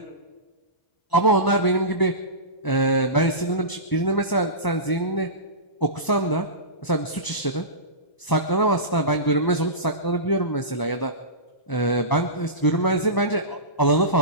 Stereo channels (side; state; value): right; late; 1.0 ms